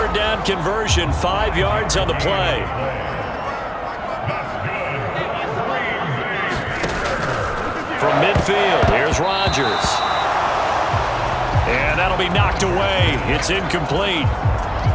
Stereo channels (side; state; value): both; identical; correlation 1.00